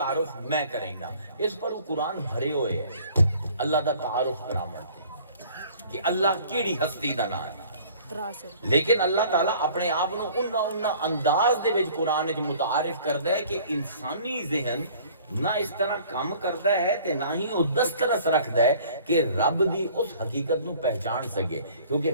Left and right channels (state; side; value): inverted; both; correlation -0.52